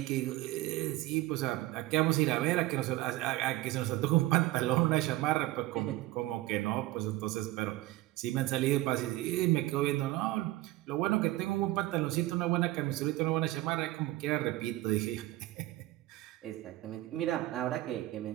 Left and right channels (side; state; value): left; quieter; 17.2 dB